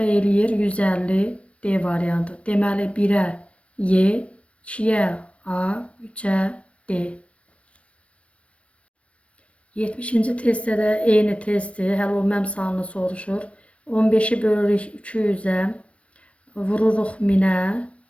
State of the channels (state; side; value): late; right; 0.062 ms